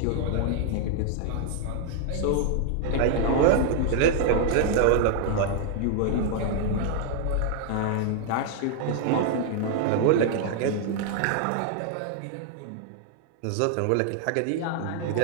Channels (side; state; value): both; different; correlation 0.00